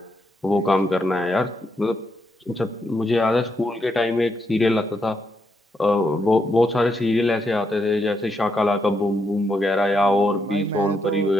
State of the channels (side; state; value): both; normal; correlation 0.80